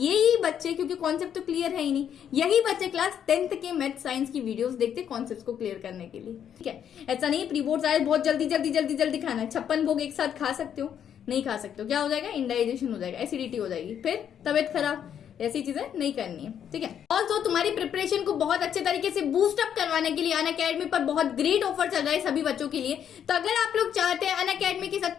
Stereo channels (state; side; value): quieter; right; 9.0 dB